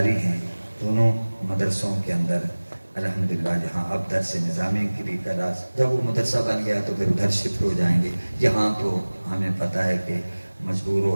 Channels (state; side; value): inverted; both; correlation -1.00